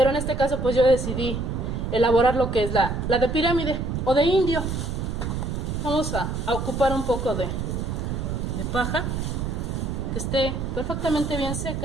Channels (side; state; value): right; noise; rumble, 3 dB below the sound